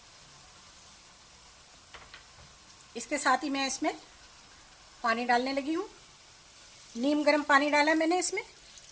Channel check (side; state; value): both; identical; correlation 1.00